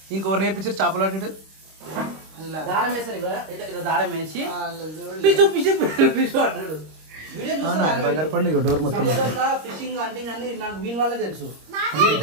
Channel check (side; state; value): left; late; 26 ms